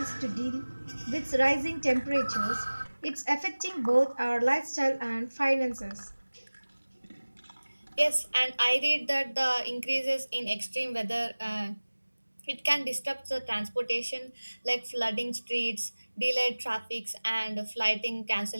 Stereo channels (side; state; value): both; inverted; correlation -1.00